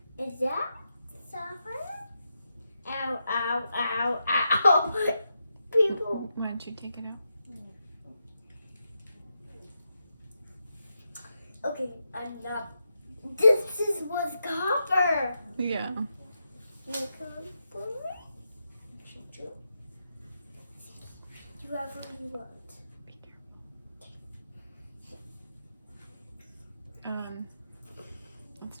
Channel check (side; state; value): both; inverted; correlation -0.86